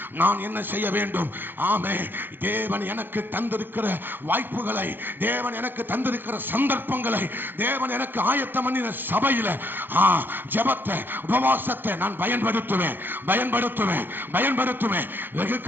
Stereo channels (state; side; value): late; left; 0.097 ms